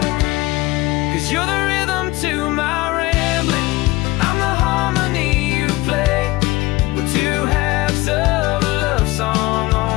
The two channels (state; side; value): quieter; right; 20.3 dB